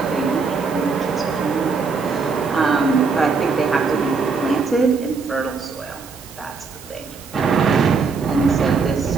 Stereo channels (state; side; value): quieter; left; 4.8 dB